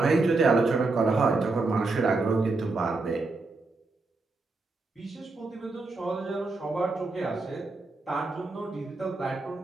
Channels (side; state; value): left; quieter; 3.5 dB